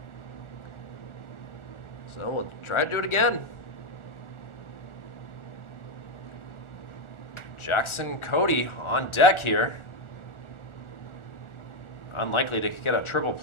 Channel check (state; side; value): late; right; 1.4 ms